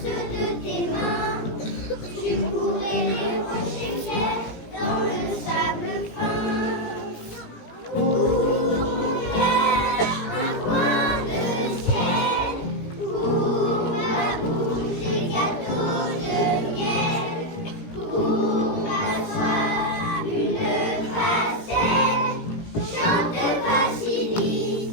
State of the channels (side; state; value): right; late; 17 ms